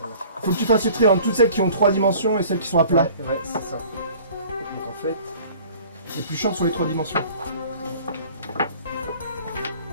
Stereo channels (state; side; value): inverted; both; correlation -0.48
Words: Faut que tu fasses le tri entre toutes celles qui ont 3 dimensions et celles qui sont à plat. Ouais, c'est ça. Donc en fait, C'est plus chiant sur les 3 dimensions.